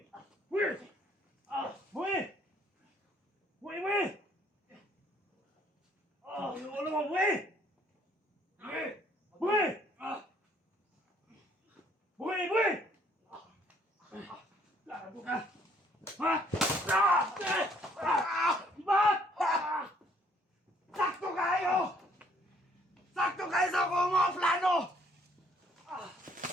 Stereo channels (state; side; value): normal; both; correlation 0.64